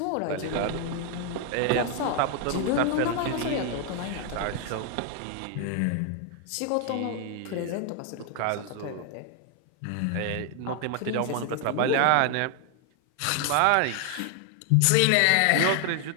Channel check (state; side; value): different; both; correlation 0.00